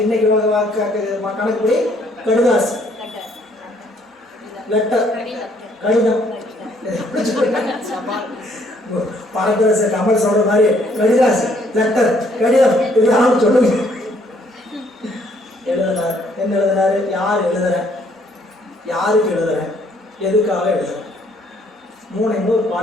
இன்னைக்கு கணக்குப்படி கடுதாசி, லெட்டர், கடிதம். பரதரச கமல் சொல்ற மாதிரி கடிதாசி, லெட்டர், கடிதம் இதெல்லாம் சொல்லுங்க. எழுதுனார். என்ன எழுதுனாரு? யார் எழுதுறேன், யாருக்கு எழுதுறேன், எதுக்காக எழுதுறேன். 3 ஒரு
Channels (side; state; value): both; normal; correlation 0.65